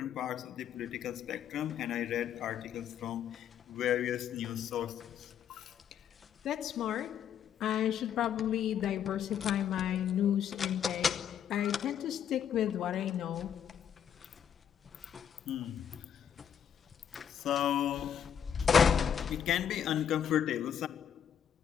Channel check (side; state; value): right; quieter; 8.7 dB